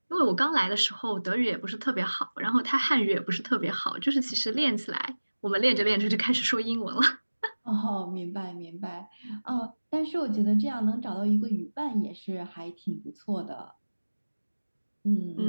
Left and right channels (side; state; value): both; inverted; correlation -1.00